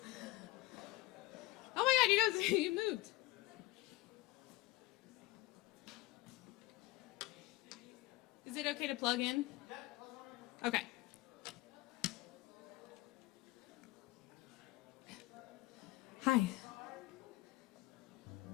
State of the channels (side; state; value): right; quieter; 19.9 dB